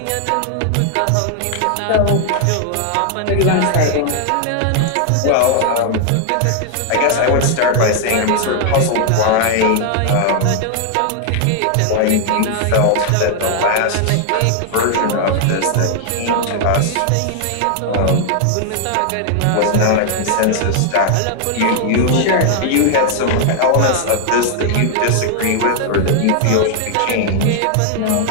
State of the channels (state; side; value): different; both; correlation 0.00